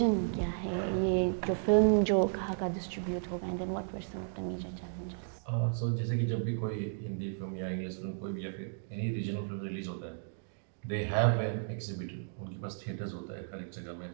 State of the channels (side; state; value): left; silent; digital silence